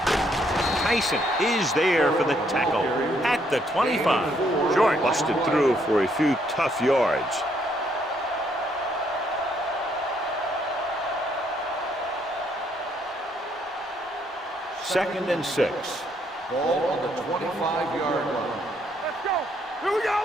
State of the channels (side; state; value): both; normal; correlation 0.71